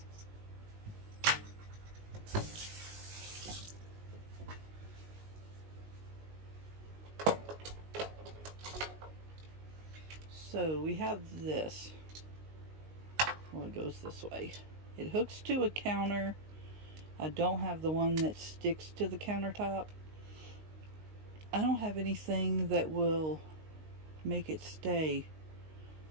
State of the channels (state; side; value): late; left; 19 ms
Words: So we have this. Well, it goes this way. It hooks to a counter. I don't have the one that sticks to the countertop. I don't have anything that will make it stay.